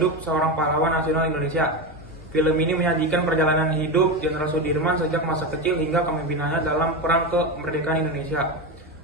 seorang pahlawan nasional Indonesia. Film ini menyajikan perjalanan hidup Jenderal Sudirman sejak masa kecil hingga kepemimpinannya dalam perang kemerdekaan Indonesia.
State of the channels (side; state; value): both; normal; correlation 0.17